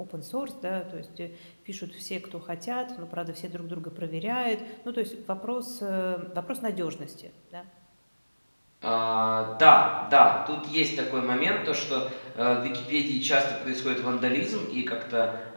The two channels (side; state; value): both; inverted; correlation -1.00